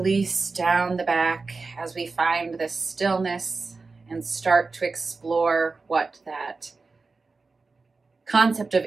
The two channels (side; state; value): left; quieter; 4.0 dB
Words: down the back as we find this stillness and start to explore what that concept of